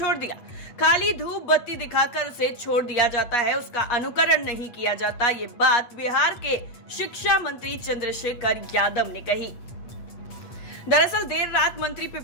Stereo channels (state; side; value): late; right; 8.4 ms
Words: दिया। खाली धूप बत्ती दिखाकर उसे छोड़ दिया जाता है, उसका अनुकरण नहीं किया जाता। ये बात बिहार के शिक्षा मंत्री चंद्रशेखर यादव ने कही। दरअसल देर रात मंत्री